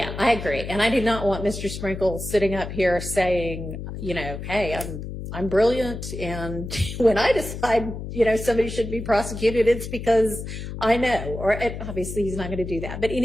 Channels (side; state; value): left; noise; hum, 8 dB below the sound